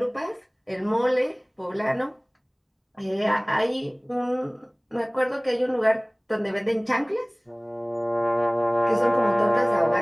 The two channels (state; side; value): identical; both; correlation 1.00